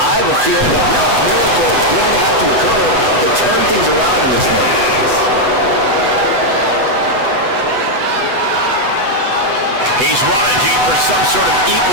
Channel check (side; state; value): left; late; 8.0 ms